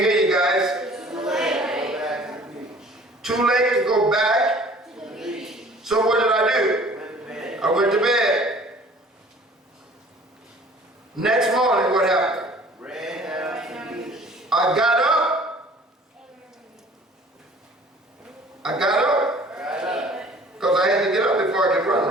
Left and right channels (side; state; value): both; normal; correlation 0.51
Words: you guys. back to the beach. Too late to go back. To the beach. So what did I do? Went to bed. I went to bed. Next morning, what happened? Ran down to the beach. I got up. I got up. Got up. Because I had to get up before I could run,